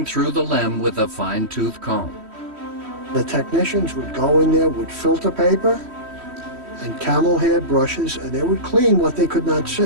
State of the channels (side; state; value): left; late; 3.1 ms